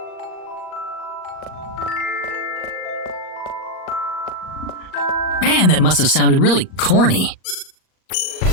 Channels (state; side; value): late; right; 38 ms